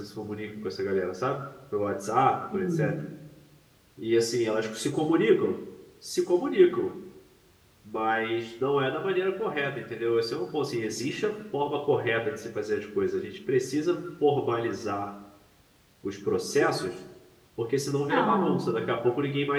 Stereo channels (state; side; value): identical; both; correlation 1.00